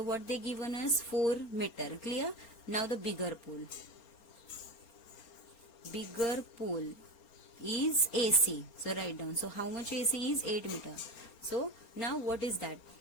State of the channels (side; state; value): right; late; 4.3 ms